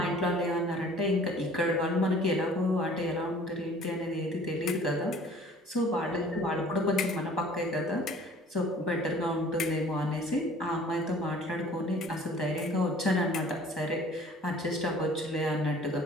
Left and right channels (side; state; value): both; normal; correlation 0.51